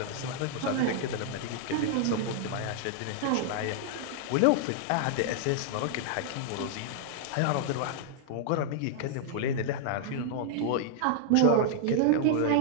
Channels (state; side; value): different; both; correlation -0.01